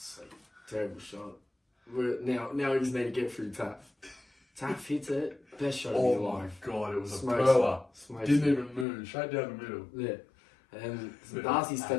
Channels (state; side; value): drops out; right; at 8.8 s